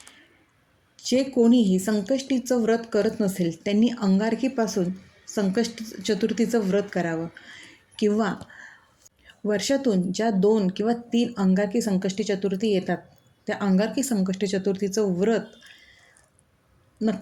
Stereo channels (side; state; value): both; identical; correlation 1.00